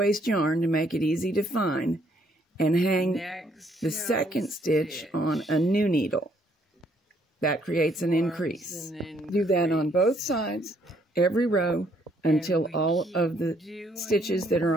yarn to make it easy to find, and hang the second stitch on a new needle. That creates an increase. Do that on both sides, every row, until all of the stitches that are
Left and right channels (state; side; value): normal; both; correlation 0.68